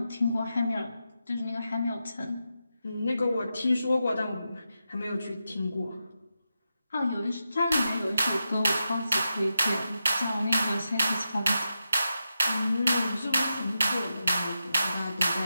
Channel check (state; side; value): inverted; both; correlation -0.88